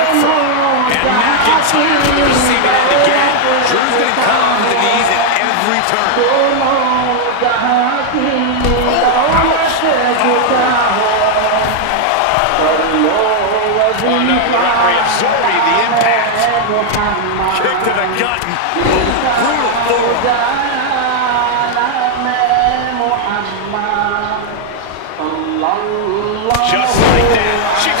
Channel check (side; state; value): both; different; correlation 0.00